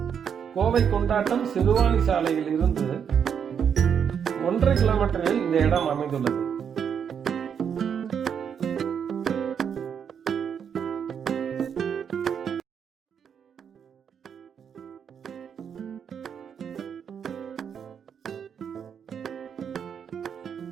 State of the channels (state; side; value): quieter; left; 7.6 dB